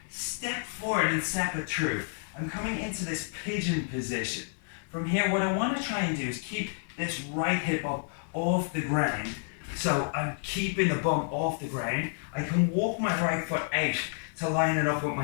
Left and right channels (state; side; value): silent; right; 58 dB below the other